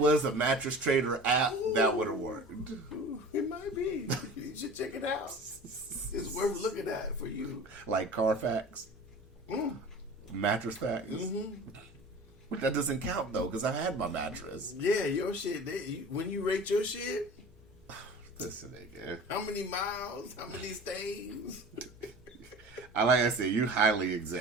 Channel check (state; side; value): normal; both; correlation 0.39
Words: a Mattress Trader app, that would have worked. It might be. You should check it out. It's worth looking at for you. Like Carfax, Mattress Facts. But that doesn't count though, because I had my mattress. Yeah, your shit. When you rate your shit, Listen, nigga. how many miles, how many stays? Like I said, you highly